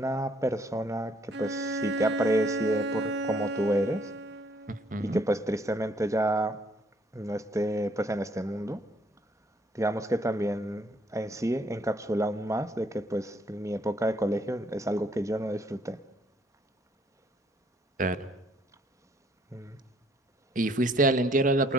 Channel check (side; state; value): both; normal; correlation 0.65